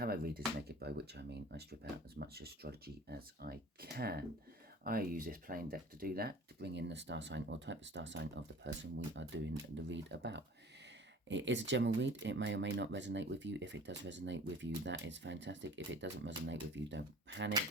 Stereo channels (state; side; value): normal; both; correlation 0.45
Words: read is naked, by which I mean I strip out as much astrology as I can. I use this plain deck to do that, to bring in the star sign or type of star sign of the person we are doing the read about. It is a general read. It may or may not resonate with you. If it does resonate with you, that is fantastic. If it doesn't resonate with you, don't